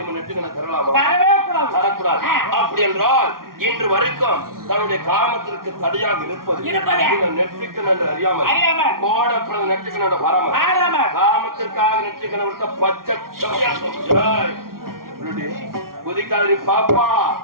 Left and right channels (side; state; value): left; late; 0.93 ms